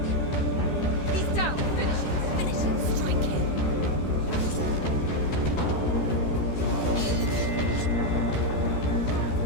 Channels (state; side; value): late; right; 13 ms